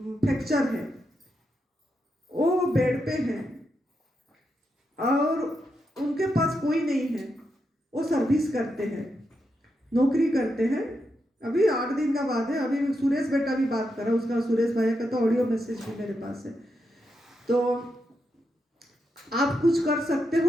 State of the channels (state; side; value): normal; both; correlation 0.84